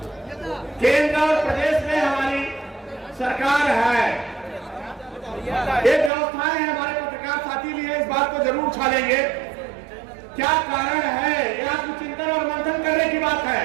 केंद्र और प्रदेश में हमारी सरकार है, ये व्यवस्थाएं हैं। हमारे पत्रकार साथी भी है, इस बात को जरूर उछालेंगे। क्या कारण है, यह चिंतन और मंथन करने की बात है।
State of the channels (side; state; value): left; drops out; at 6.1 s